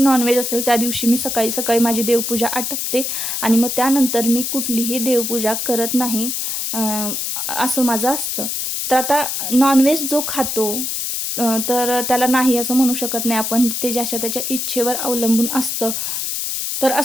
असेल त्या दिवशी मी सकाळी सकाळी माझी देवपूजा आटपते आणि मग त्यानंतर मी कुठलीही देवपूजा करत नाही, असं माझं असतं. तर आता नॉनव्हेज जो खातो तर त्याला नाही असं म्हणू शकत नाही आपण, ते ज्याच्या त्याच्या इच्छेवर अवलंबून असतं. तर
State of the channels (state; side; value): noise; left; hiss, 2 dB below the sound